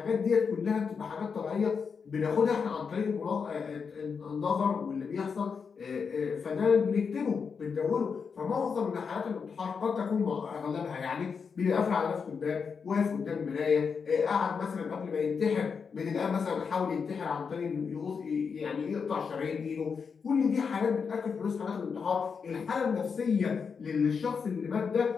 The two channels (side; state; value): right; quieter; 5.8 dB